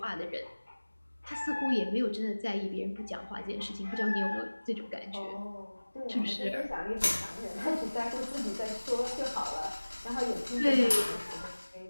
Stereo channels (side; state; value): both; inverted; correlation -1.00